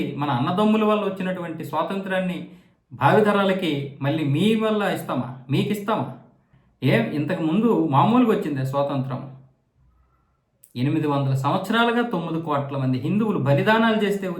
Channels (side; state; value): both; identical; correlation 1.00